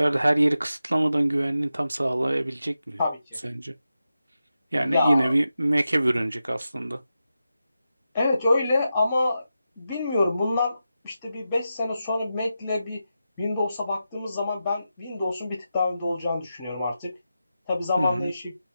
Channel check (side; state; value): both; inverted; correlation -0.90